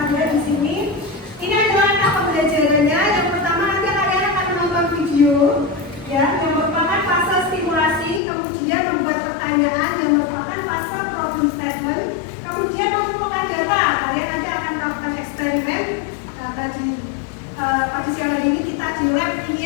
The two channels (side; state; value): right; drops out; at 8.2 s